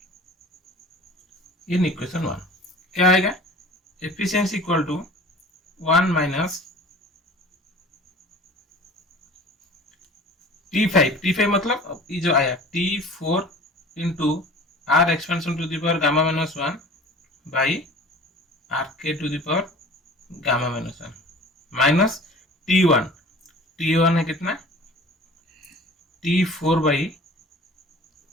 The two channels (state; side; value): normal; both; correlation 0.43